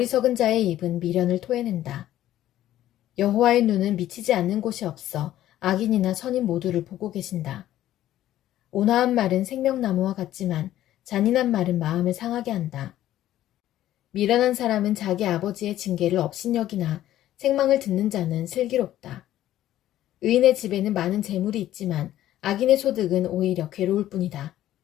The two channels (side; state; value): right; quieter; 13.3 dB